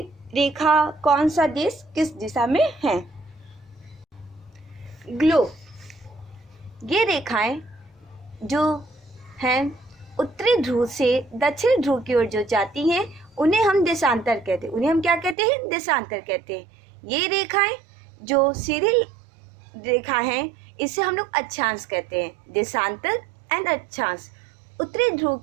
रेखा, कौन सा देश किस दिशा में है। ग्लोब, ये रेखाएं जो हैं उत्तरी ध्रुव से दक्षिण ध्रुव की ओर जो जाती हैं, उन्हें हम देशांतर कहते हैं। उन्हें हम क्या कहते हैं? देशांतर कहते हैं। ये रेखाएं जो सीधी रेखा हैं, इसे हम लोग अक्षांश कहते हैं। देशांतर एंड अक्षांश। उत्तरी ध्रुव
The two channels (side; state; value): left; drops out; at 15.4 s